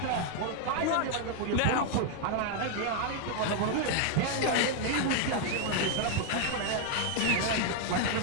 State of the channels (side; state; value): both; different; correlation 0.00